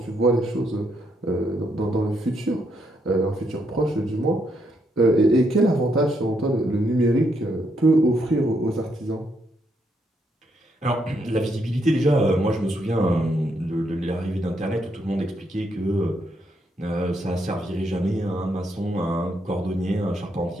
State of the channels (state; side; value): normal; both; correlation 0.76